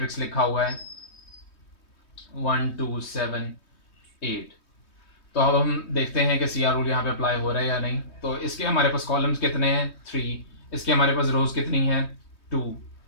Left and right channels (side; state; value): right; late; 3.2 ms